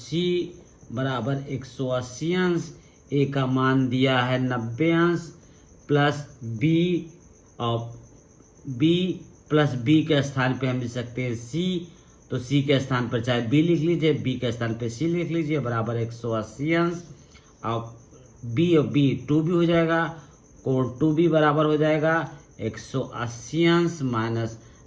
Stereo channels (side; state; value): both; identical; correlation 1.00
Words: बराबर 180 अंश। A का मान दिया है 90 अंश, प्लस B, और B प्लस B के स्थान पे हम लिख सकते हैं C, तो C के स्थान पर चाहे B लिख लीजिए, B के स्थान पे C लिख लीजिए, बराबर 180 अंश। और B और B 2B हो जाएगा, कोण 2B बराबर हो जाएगा 180 अंश माइनस